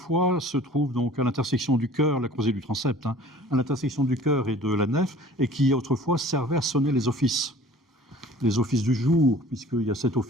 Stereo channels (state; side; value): normal; both; correlation 0.48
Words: se trouve donc à l'intersection du chœur, la croisée du transept, à l'intersection du chœur et de la nef, et qui autrefois servait à sonner les offices du jour, puisqu'il y a 7